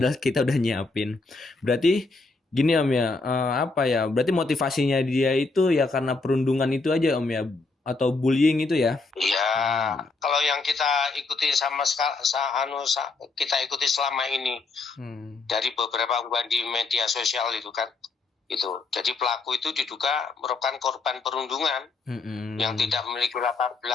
kita udah nyiapin. Berarti gini Om ya, apa ya? Berarti motivasinya dia itu ya karena perundungan itu aja Om ya, atau bullying itu ya? Iya, kalau yang kita ikuti kita ikuti selama ini dari beberapa unggahan di media sosial itu kan, itu. Jadi pelaku itu diduga merupakan korban perundungan yang tidak memiliki latar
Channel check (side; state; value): right; quieter; 3.8 dB